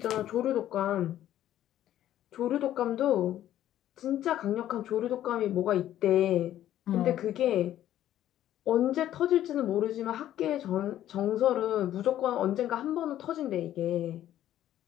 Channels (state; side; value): quieter; right; 12.3 dB